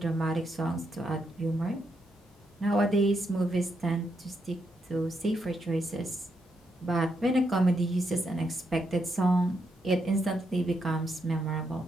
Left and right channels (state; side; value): normal; both; correlation 0.80